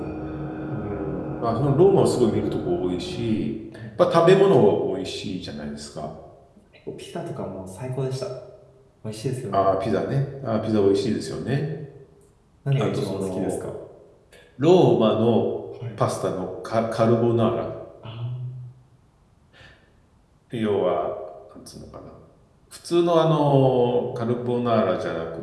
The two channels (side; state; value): both; identical; correlation 1.00